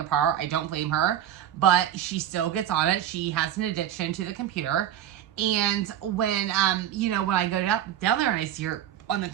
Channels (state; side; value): quieter; left; 11.0 dB